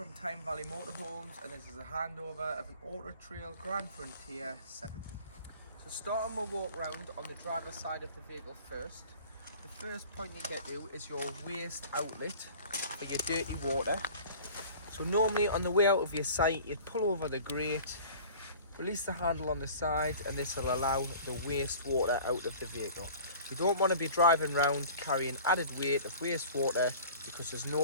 Tyne Valley Motorhomes, and this is a handover of an Auto Trail Grande Frontier 70. So starting my walk round on the driver's side of the vehicle first, the first point you get to is your waste outlet for your dirty water. So normally on the way out of your site, you'd pull over the grate, release the handle on the side, and this will allow the waste water out of the vehicle. You don't want to be driving around carrying added weight of wastewater because there's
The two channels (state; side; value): inverted; both; correlation -0.44